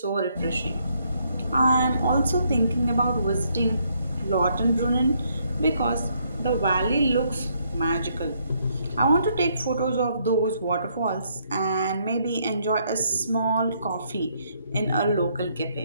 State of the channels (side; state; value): both; inverted; correlation -0.72